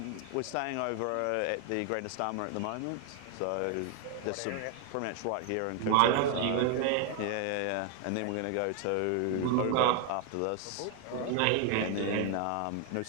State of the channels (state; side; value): different; both; correlation 0.00